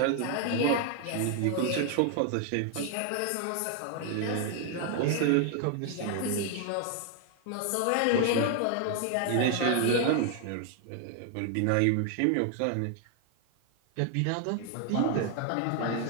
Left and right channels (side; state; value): both; different; correlation 0.00